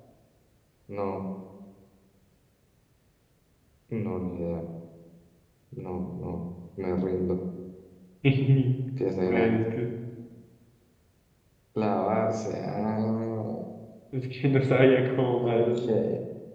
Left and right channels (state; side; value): identical; both; correlation 1.00